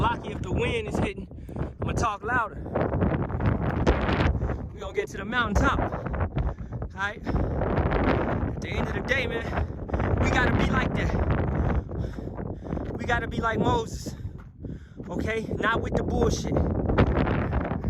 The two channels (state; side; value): identical; both; correlation 1.00